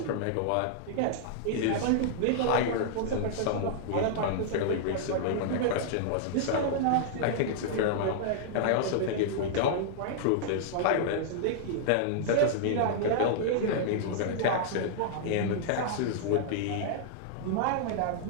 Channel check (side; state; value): both; different; correlation -0.01